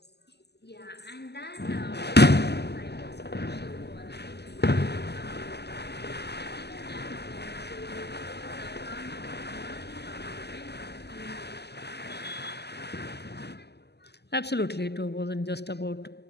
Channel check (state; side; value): late; right; 0.49 ms